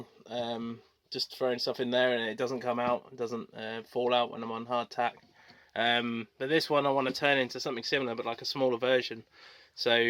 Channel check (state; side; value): identical; both; correlation 1.00